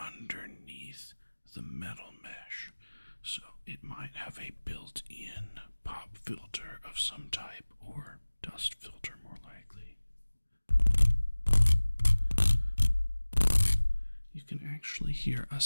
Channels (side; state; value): both; inverted; correlation -1.00